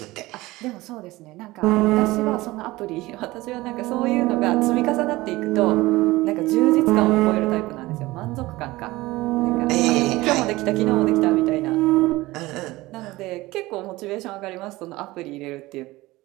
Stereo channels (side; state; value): left; quieter; 19.4 dB